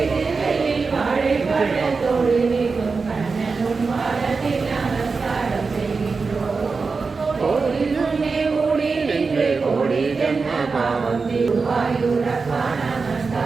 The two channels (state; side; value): quieter; left; 4.5 dB